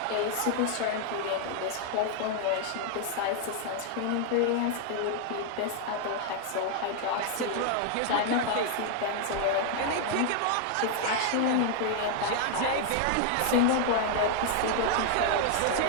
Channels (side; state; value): both; different; correlation 0.00